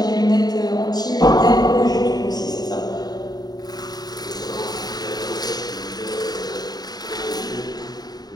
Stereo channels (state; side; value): late; right; 0.19 ms